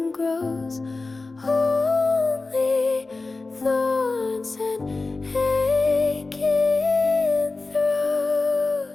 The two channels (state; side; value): quieter; right; 3.6 dB